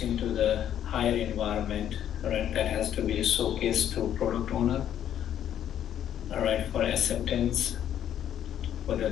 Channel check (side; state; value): right; quieter; 10.4 dB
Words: to the higher environment, right? That has to be showcased to product owner, all right, for acceptance, whether